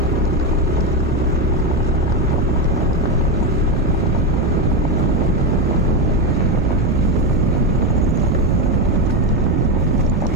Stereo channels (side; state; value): both; normal; correlation 0.12